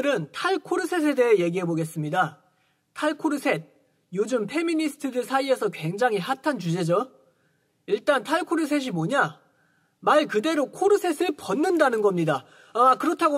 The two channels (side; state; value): both; identical; correlation 1.00